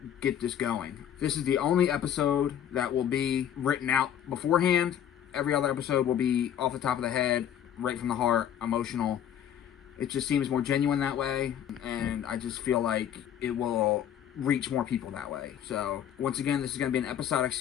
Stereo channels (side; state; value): right; quieter; 9.9 dB